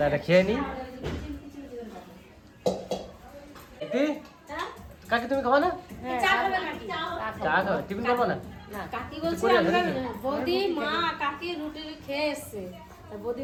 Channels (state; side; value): identical; both; correlation 1.00